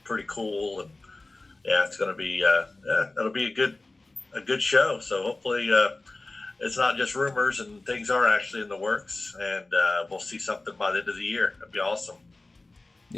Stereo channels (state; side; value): quieter; right; 3.1 dB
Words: pretty cool, and yeah, it's going to be it'll be a good show. So hopefully it's not just rumors and things are actually in the works, and we'll see something by the end of the year. That'd be awesome.